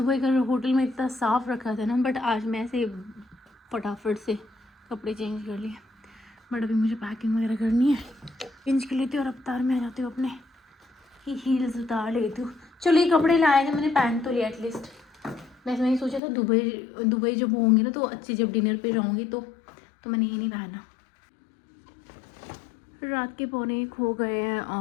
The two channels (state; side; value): drops out; right; at 16.2 s